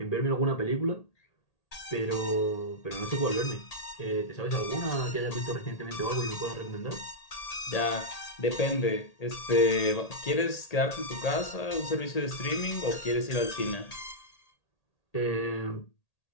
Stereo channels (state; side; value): late; right; 1.8 ms